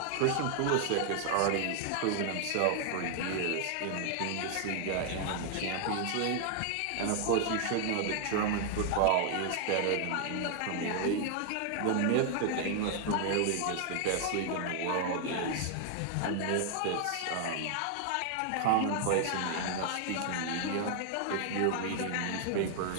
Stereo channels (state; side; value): different; both; correlation 0.00